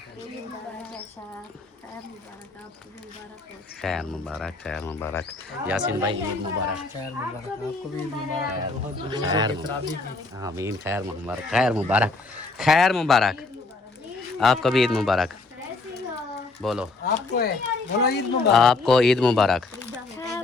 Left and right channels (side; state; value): right; quieter; 3.6 dB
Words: खैर मुबारक खैर मुबारक। यासीन भाई ईद मुबारक। खैर मुबारक, आपको भी मुबारक, बहुत खैर आमीन, खैर मुबारक खैर मुबारक खैर मुबारक। आपको भी ईद मुबारक। बोलो, आपको है, बोलो ईद मुबारक। आपको ईद मुबारक,